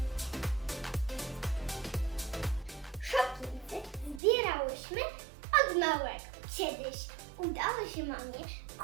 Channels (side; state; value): left; drops out; at 4.2 s